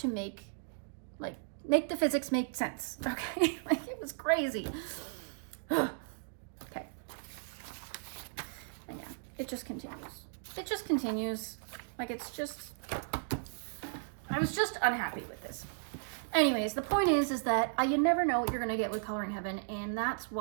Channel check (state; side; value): silent; left; digital silence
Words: make the physics make sense. Okay. Like, it was crazy. Okay. And yeah, it just continues. It just continues. Like, it's just, I was just unhappy with this. Anyways, the point is that you never know what you're going to get with Coloring Heaven, and that's